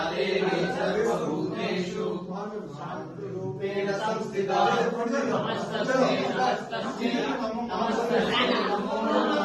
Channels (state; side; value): identical; both; correlation 1.00